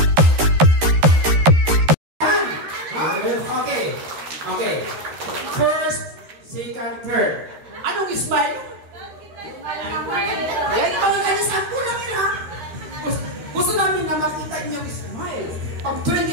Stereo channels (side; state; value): left; late; 13 ms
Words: Okay. First, second, third. Anong smile? Ayan, mga kanya sampu lang yun, ha? Gusto namin na makita yung smile. Pag